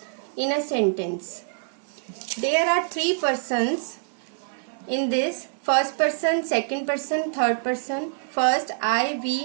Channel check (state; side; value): silent; left; digital silence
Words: in a sentence. There are three persons in this. First person, second person, third person. First, I, we,